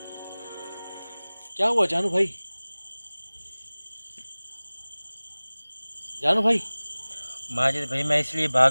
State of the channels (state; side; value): inverted; both; correlation -1.00